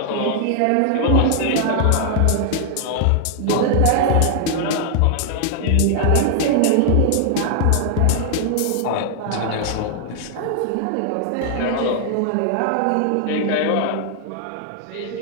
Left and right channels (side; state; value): both; different; correlation 0.00